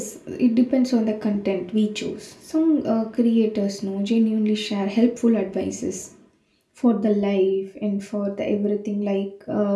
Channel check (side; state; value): both; identical; correlation 1.00